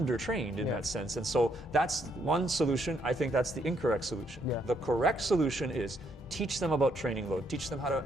in that sense. And so that's one solution. I think that's the incorrect solution. The correct solution is teach them about training load, teach them how to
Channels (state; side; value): normal; both; correlation 0.72